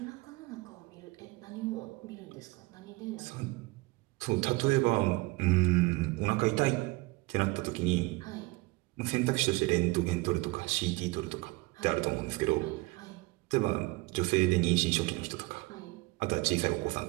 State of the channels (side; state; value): left; quieter; 22.9 dB